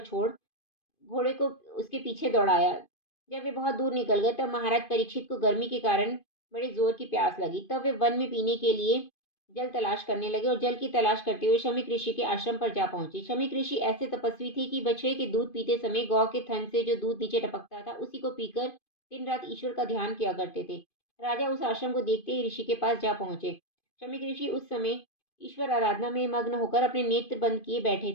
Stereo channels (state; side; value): late; right; 2.5 ms